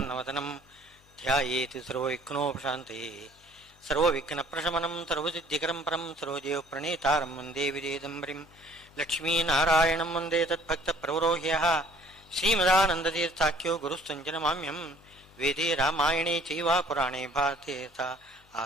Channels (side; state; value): both; normal; correlation 0.56